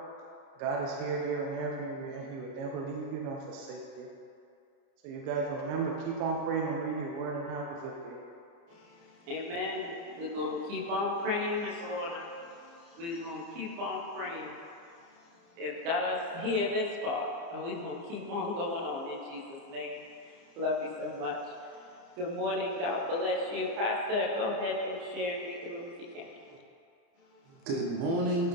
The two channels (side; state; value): left; late; 29 ms